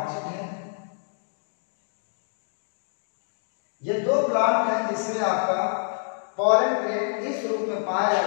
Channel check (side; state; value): right; silent; digital silence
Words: है। ये दो प्लांट हैं जिसमें आपका पॉलन ग्रेन इस रूप में पाया